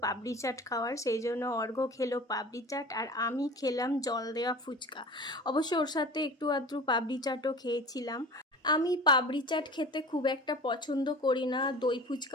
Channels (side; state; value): both; normal; correlation 0.38